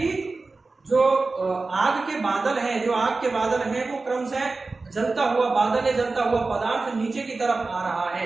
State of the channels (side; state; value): left; quieter; 3.7 dB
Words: जो आग के बादल हैं, जो आग के बादल हैं वो क्रमशः जलता हुआ बादल है, जलता हुआ पदार्थ नीचे की तरफ आ रहा है।